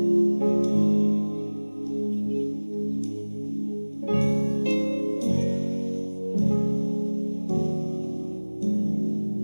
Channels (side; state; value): both; inverted; correlation -1.00